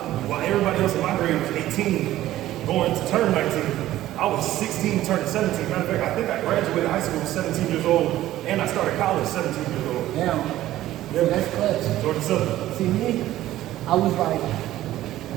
everybody else in my grade was 18, going to turn 19, I was 16 turning 17. Matter of fact, I think I graduated high school 17 years old, and I started college 17 years old. Now, Yeah. that's clutch. Georgia Southern. See me, I was like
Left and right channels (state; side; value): quieter; left; 14.4 dB